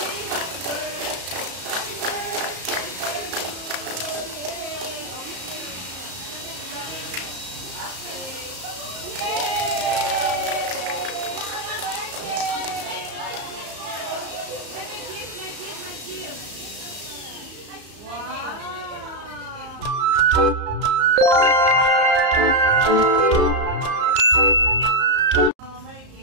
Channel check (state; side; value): late; left; 34 ms